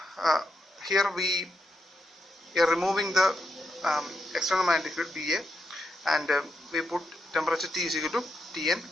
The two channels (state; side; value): normal; both; correlation 0.83